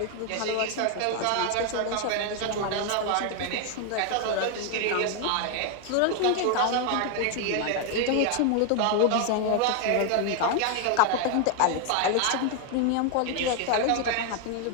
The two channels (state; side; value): different; both; correlation 0.01